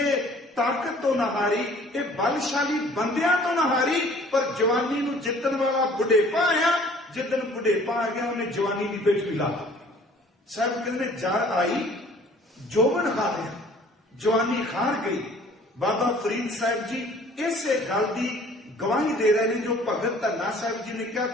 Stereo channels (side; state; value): both; normal; correlation 0.53